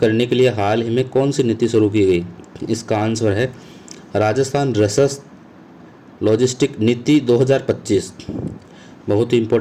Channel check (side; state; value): both; identical; correlation 1.00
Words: के लिए हाल ही में कौन सी नीति शुरू की गई? इसका आंसर है राजस्थान रसद लॉजिस्टिक नीति 2025। बहुत ही